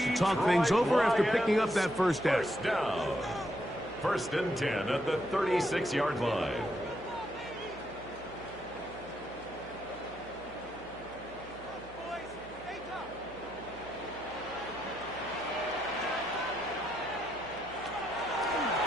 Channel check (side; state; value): right; noise; hum, 19 dB below the sound